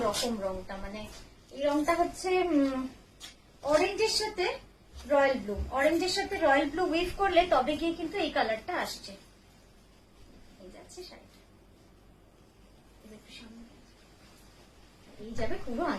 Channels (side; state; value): both; identical; correlation 1.00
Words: রকম রংটা। মানে এই রংটা হচ্ছে অরেঞ্জের সাথে রয়্যাল ব্লু, অরেঞ্জের সাথে রয়্যাল ব্লু উইভ করলে তবে গিয়ে কিন্তু এই কালারটা আসছে। এই যাচ্ছে শাড়িটা, এই যাবে পুরো